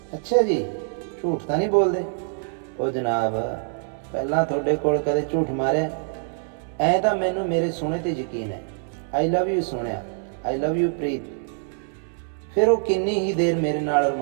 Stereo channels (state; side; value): silent; left; 62 dB below the other